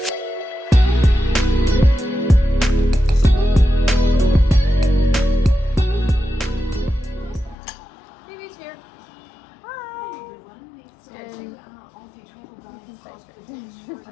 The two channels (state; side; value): drops out; right; at 7.6 s